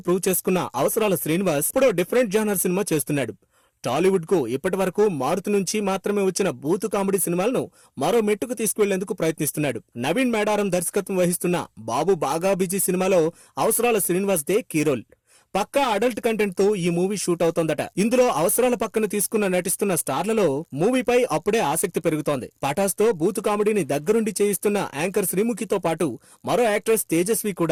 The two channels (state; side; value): identical; both; correlation 1.00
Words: ప్రూవ్ చేసుకున్న అవసరాల శ్రీనివాస్ ఇప్పుడు డిఫరెంట్ జానర్ సినిమా చేస్తున్నాడు. టాలీవుడ్ కు ఇప్పటి వరకు మారుతి నుంచి మాత్రమే వచ్చిన బూతు కామెడీ సినిమాలను మరో మెట్టుకు తీసుకువెళ్లేందుకు ప్రయత్నిస్తున్నాడు. నవీన్ మేడారం దర్శకత్వం వహిస్తున్న బాబు బాగా బిజీ సినిమాలో అవసరాల శ్రీనివాస్ దే కీ రోల్. పక్కా అడల్ట్ కంటెంట్ తో ఈ మూవీ షూట్ అవుతోందట. ఇందులో అవసరాల పక్కన తీసుకున్న నటిస్తున్న స్టార్లలో మూవీపై అప్పుడే ఆసక్తి పెరుగుతోంది. పటాస్ తో బూతు కామెడీని దగ్గరుండి చేయిస్తున్న యాంకర్ శ్రీముఖితో పాటు మరో యాక్ట్రెస్ తేజస్వి